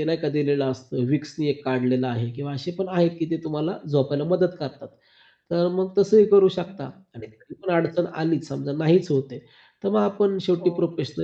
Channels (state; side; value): identical; both; correlation 1.00